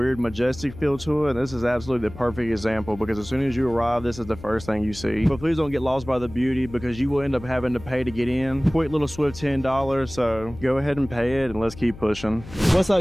majestic feel to it, and this is absolutely the perfect example because as soon as you arrive, this is the first thing you see. But please don't get lost by the beauty because you will end up having to pay to get in. Quick little swift $10, so go ahead and pay it and let's keep pushing. What's up,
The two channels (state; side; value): noise; left; hum, 16 dB below the sound